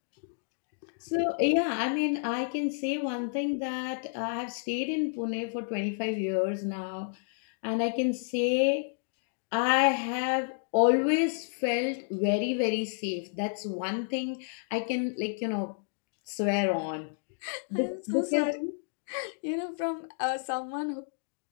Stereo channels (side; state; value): right; silent; digital silence